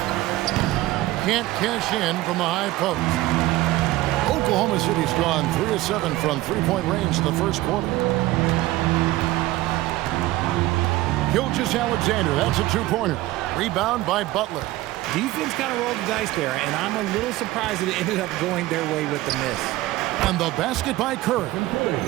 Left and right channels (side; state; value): left; quieter; 17.3 dB